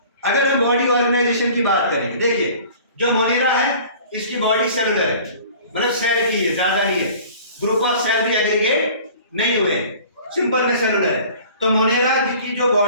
अगर हम बॉडी ऑर्गेनाइजेशन की बात करेंगे, देखिए जो मोनेरा है इसकी बॉडी सेलुलर है, मतलब सेल की है, ज्यादा नहीं है, ग्रुप ऑफ सेल भी एग्रीगेट नहीं हुए, सिंपल में सेलुलर है। तो मोनेरा की जो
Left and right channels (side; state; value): both; inverted; correlation -0.46